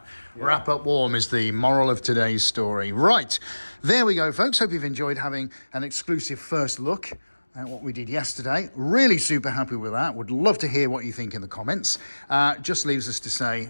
Wrap up warm is the moral of today's story. Right, there we go, folks. Hope you've enjoyed having an exclusive first look at what we did yesterday. Really super happy with that. Would love to hear what you think in the comments. Just leaves us to say,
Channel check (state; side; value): inverted; both; correlation -1.00